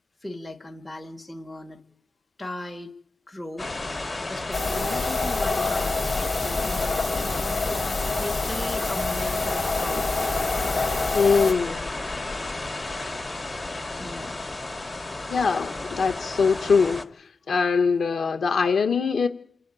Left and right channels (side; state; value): right; quieter; 3.8 dB